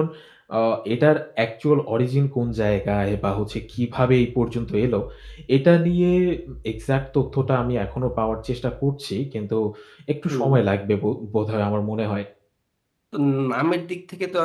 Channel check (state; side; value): identical; both; correlation 1.00